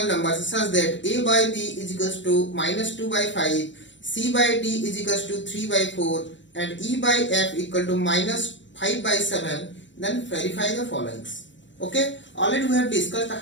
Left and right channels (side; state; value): right; late; 0.54 ms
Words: numbers such that a by b is equals to -2 by 5, c by d is equals to 3 by 4 and e by f equal to -5 by 7, then verify the followings. Okay, already we have discussed